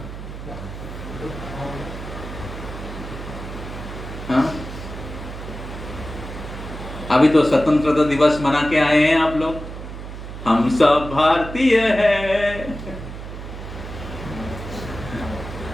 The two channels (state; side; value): noise; right; hum, 10 dB below the sound